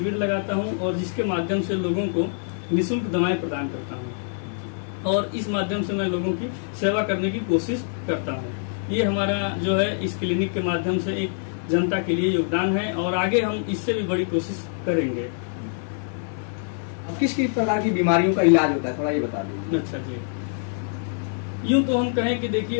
लगाता हूं और जिसके माध्यम से लोगों को निःशुल्क दवाएं प्रदान करता हूं और इस माध्यम से मैं लोगों की सेवा करने की कोशिश करता हूं। ये हमारा जो है इस क्लिनिक के माध्यम से एक जनता के लिए योगदान है और आगे हम इससे भी बड़ी कोशिश करेंगे। अब किस किस प्रकार की बीमारियों का इलाज होता है, थोड़ा ये बता दीजिए। अच्छा जी, यूं तो हम कहें कि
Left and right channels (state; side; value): silent; right; digital silence